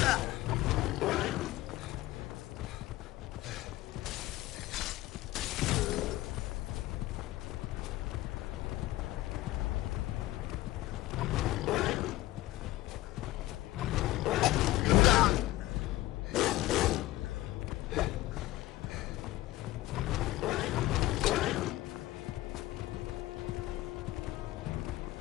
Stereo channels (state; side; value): quieter; right; 16.8 dB